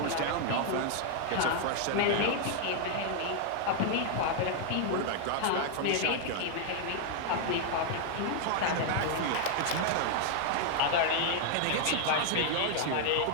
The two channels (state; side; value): different; both; correlation 0.00